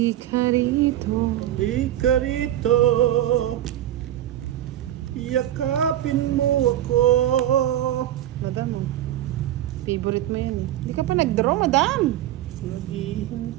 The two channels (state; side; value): quieter; left; 12.4 dB